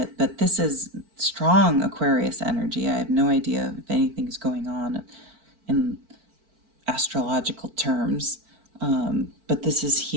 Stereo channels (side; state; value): left; late; 4.5 ms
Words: but this is strong Aquarius energy. I have no idea if anything's going on in astrological terms, but this is